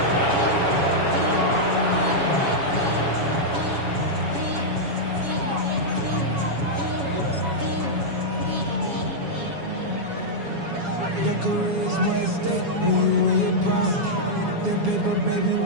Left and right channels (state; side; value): late; left; 7.2 ms